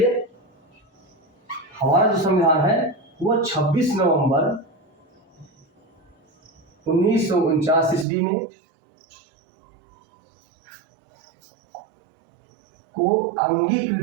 हमारा जो संविधान है वो 26 नवंबर 1949 ईस्वी में को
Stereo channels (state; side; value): drops out; left; at 8.1 s